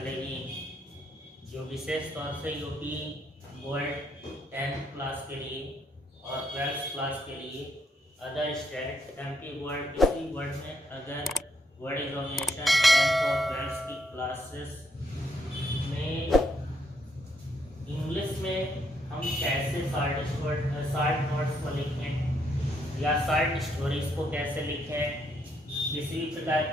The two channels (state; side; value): normal; both; correlation 0.74